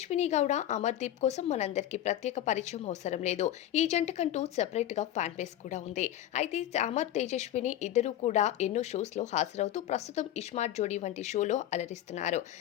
గౌడ అమర్దీప్ కోసం మనందరికీ ప్రత్యేక పరిచయం అవసరం లేదు. ఈ జంటకంటూ సెపరేట్ గా ఫ్యాన్ బేస్ కూడా ఉంది. అయితే అమర్ తేజస్విని ఇద్దరు కూడా ఎన్నో షోస్ లో హాజరవుతూ ప్రస్తుతం ఇస్మార్ట్ జోడీ వంటి షోలో అలరిస్తున్నారు.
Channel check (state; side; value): quieter; right; 12.4 dB